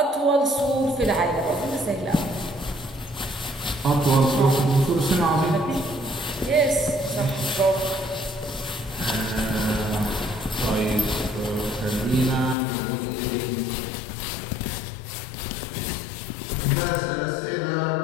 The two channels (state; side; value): drops out; right; at 12.6 s